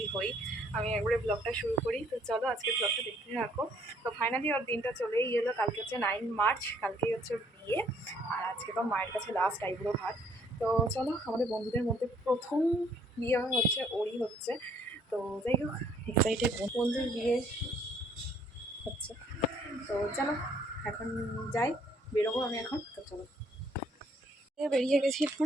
হই, আমি একবারে ব্লগটা শুরু করি। তো চলো আজকে ব্লগটা দেখতে থাকো। তো ফাইনালি ওর দিনটা চলেই এলো। কালকে হচ্ছে 9 মার্চ, কালকেই হচ্ছে ওর বিয়ে। আর আজকে তো মায়ের কাছে লাস্ট আইবুড়ো ভাত। তো চলো, আমাদের বন্ধুদের মধ্যে প্রথম বিয়ে হচ্ছে ওরই হচ্ছে। তো যাই হোক, এক্সাইটেড। বন্ধুর বিয়ে হচ্ছে। তো চলো এখন যাই, বেরোবো আমি এখন। তো চলো, বেরিয়ে গেছি,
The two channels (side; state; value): both; normal; correlation 0.63